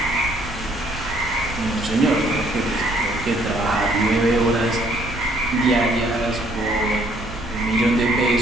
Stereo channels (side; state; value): right; noise; rumble, 13 dB below the sound